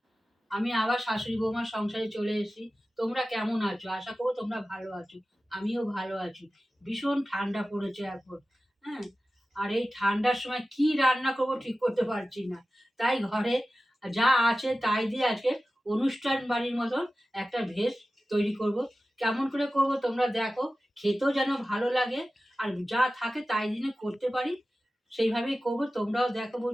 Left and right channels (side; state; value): both; normal; correlation 0.95